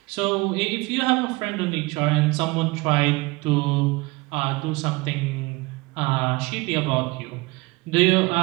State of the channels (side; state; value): left; quieter; 23.5 dB